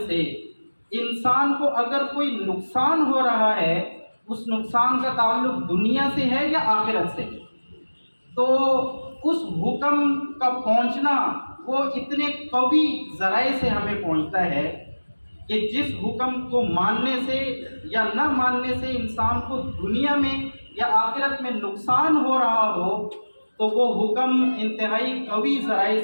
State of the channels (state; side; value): inverted; both; correlation -1.00